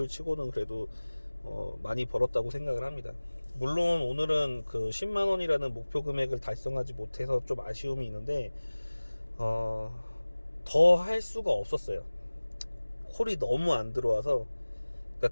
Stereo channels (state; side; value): inverted; both; correlation -1.00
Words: 치고는 그래도 많이 벌었다고 생각을 합니다. 물론 오늘은 그 10만원이라는 목표 금액을 달성하지 못해서 좀 아쉬움이 있는데 더 할 수가 없었어요. 콜이 너무 안 들어와서,